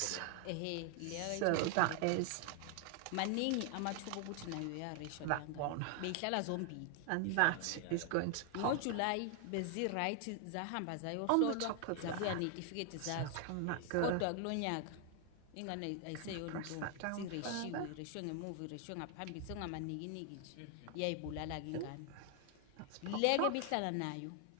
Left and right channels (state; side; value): different; both; correlation 0.00